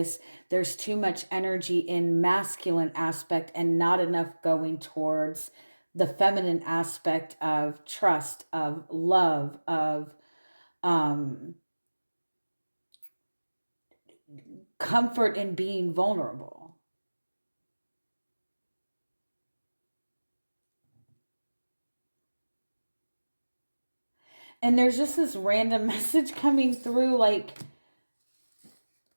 there's too much energy in masculine aspect, and not enough going towards the feminine aspect of trust, of love, of um, comfort in being vulnerable. And there's just this random message coming through, like,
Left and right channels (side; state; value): both; inverted; correlation -1.00